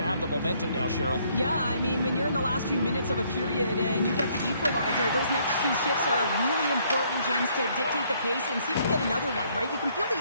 have the momentum now, Cheryl. Yeah, I mean, when you're in the last few minutes of a period and you get the equalizer, those next two shifts are really important, James, to dictate the pace and see if we get another one, right? You can feel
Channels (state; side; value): inverted; both; correlation -0.67